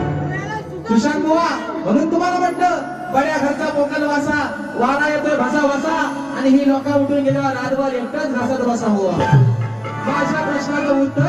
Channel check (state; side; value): identical; both; correlation 1.00